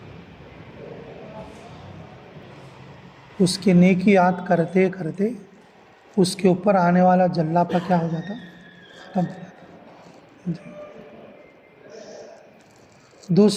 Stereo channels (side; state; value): both; identical; correlation 1.00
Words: उसकी नेकी याद करते करते उसके ऊपर आने वाला जल्लापा क्या हो जाता, खत्म हो जाता।